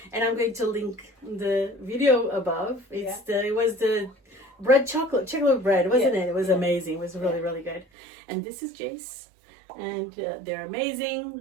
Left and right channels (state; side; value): drops out; left; at 7.9 s